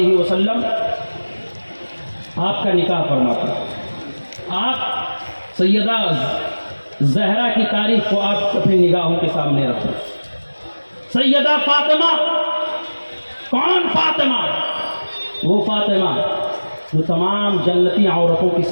وسلم آپ کا نکاح فرماتے ہیں۔ آپ سیدہ زہرا کی تاریخ کو آپ اپنی نگاہوں کے سامنے رکھیں۔ سیدہ فاطمہ، کون فاطمہ؟ وہ فاطمہ جو تمام جنتی عورتوں کی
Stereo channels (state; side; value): inverted; both; correlation -1.00